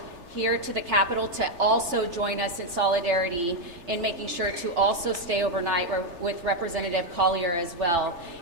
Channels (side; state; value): left; late; 3.4 ms